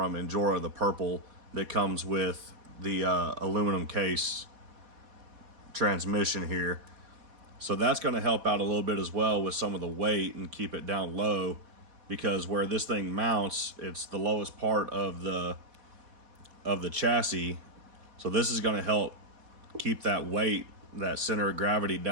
Injora, the purple, that comes with the aluminum case transmission here. So that's going to help out a little bit as well with some of the weight and keep it down low, because where this thing mounts, it's the lowest part of the chassis. So this is going to help keep that weight, that center of gravity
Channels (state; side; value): late; left; 4.1 ms